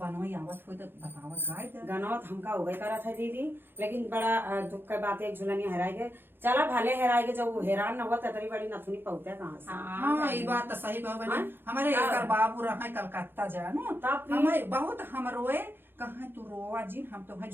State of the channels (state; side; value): late; left; 0.10 ms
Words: आवत हो तो बतावत गाय दे। गाना तो हमका हो गई करा था दीदी, लेकिन बड़ा दुख का बात है एक झुलनी हराए गए। चला भले हराए गए, जब हैरान न हुआ तरी बड़ी नथुनी पहुंचे कहाँ से। हाँ ये बात तो सही कहो बहनी। हमारे एक बाबू रहा कलकत्ता जानो, हमें बहुत हम रोए कहाँ तू रोवा जी, हम तो